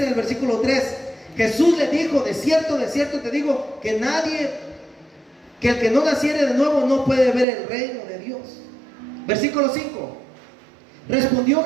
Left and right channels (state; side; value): drops out; left; at 7.5 s